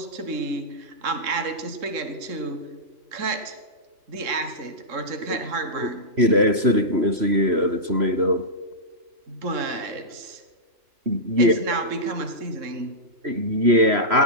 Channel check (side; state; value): left; late; 3.0 ms